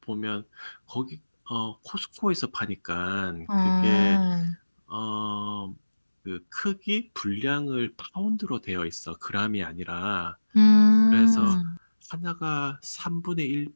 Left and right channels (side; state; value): both; inverted; correlation -1.00